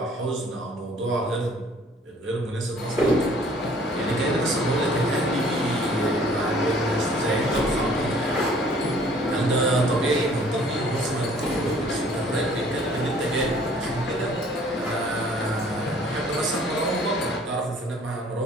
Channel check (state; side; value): normal; both; correlation 0.56